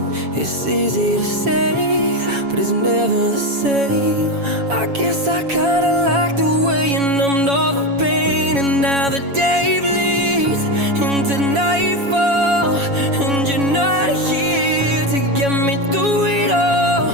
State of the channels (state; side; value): late; left; 7.2 ms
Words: It's easy to say, but it's never the same. I guess I kinda like the way you numbed all the pain, and now the day bleeds into nightfall, and you're not here to get me through it all.